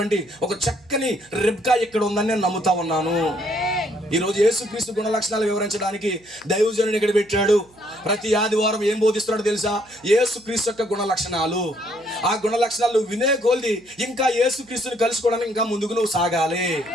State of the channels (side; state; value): right; noise; hum, 30 dB below the sound